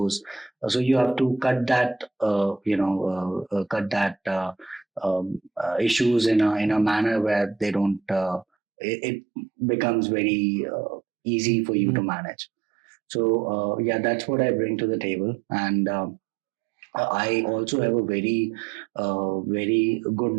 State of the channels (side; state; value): left; drops out; at 8.5 s